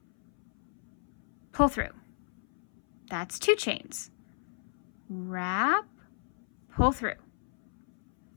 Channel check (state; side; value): silent; right; 57 dB below the other